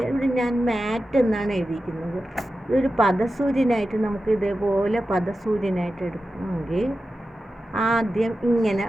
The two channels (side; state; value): both; normal; correlation 0.92